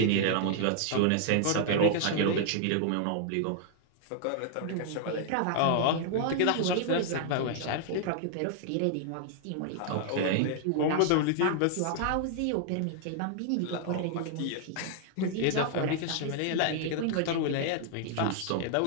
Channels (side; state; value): both; different; correlation 0.00